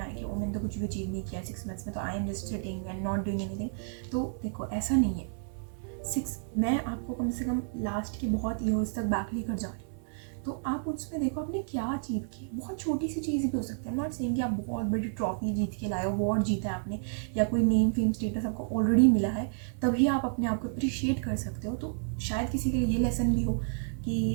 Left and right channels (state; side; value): silent; left; 56 dB below the other